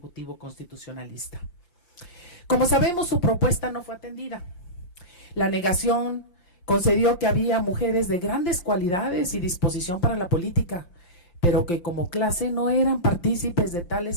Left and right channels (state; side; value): late; right; 5.8 ms